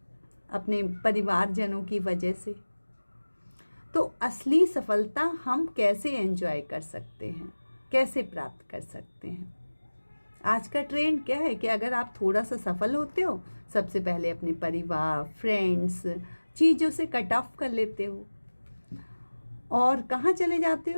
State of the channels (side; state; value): both; inverted; correlation -1.00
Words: अपने परिवारजनों की वजह से। तो असली सफलता हम कैसे एंजॉय कर सकते हैं, कैसे प्राप्त कर सकते हैं? आज का ट्रेंड क्या है कि अगर आप थोड़ा सा सफल होते हो, सबसे पहले अपने परिवार, फ्रेंड्स, चीज़ों से कट ऑफ कर लेते हो और कहाँ चले जाते